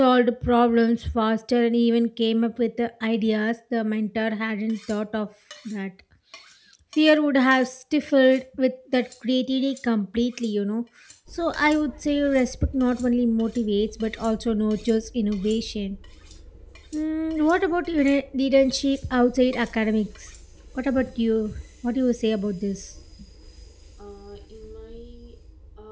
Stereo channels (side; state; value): both; identical; correlation 1.00